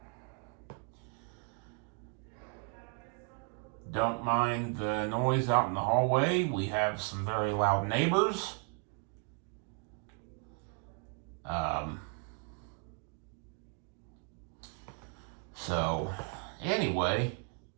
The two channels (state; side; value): quieter; left; 39.0 dB